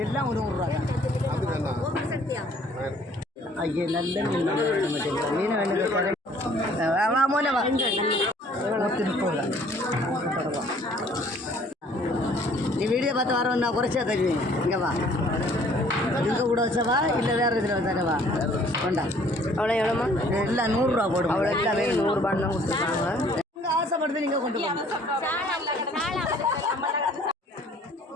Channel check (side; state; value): both; normal; correlation 0.57